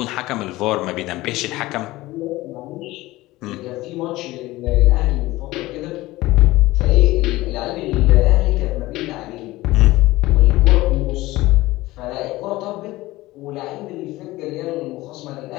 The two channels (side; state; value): right; quieter; 18.5 dB